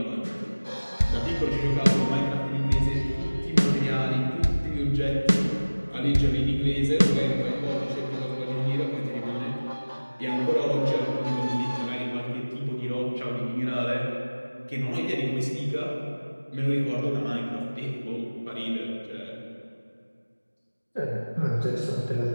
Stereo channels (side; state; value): both; inverted; correlation -1.00